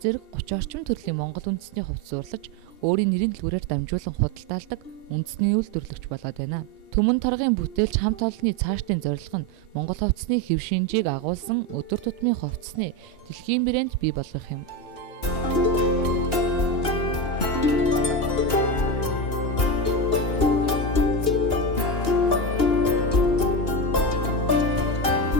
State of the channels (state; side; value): late; right; 2.8 ms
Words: 30 орчим төрлийн монгол үндэсний хувцас уурлаж өөрийн нэрийн дэлгүүрээр дамжуулан худалдаалдаг үндэсний үйлдвэрлэгч болоод байна. Түмэн торгын бүтээлч хамт олонны цаашдын зорилго нь Монгол хувцсны хэв шинжийг агуулсан өдөр тутмын хувцсны дэлхийн брэнд бий болгох юм.